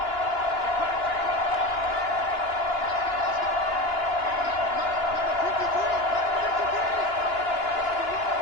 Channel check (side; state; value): right; late; 2.9 ms